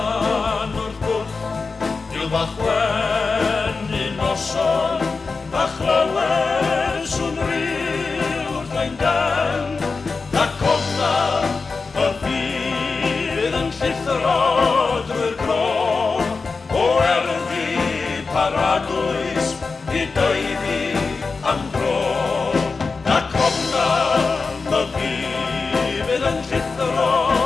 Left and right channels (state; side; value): quieter; right; 4.4 dB